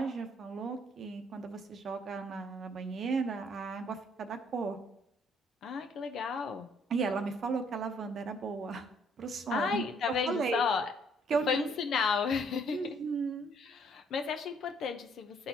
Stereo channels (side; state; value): both; normal; correlation 0.65